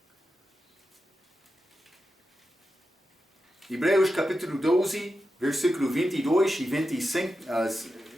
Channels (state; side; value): normal; both; correlation 0.90